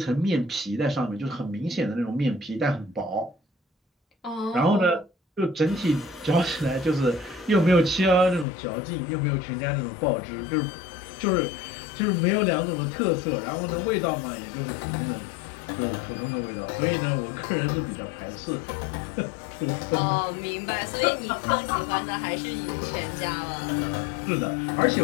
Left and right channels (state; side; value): drops out; right; at 8.5 s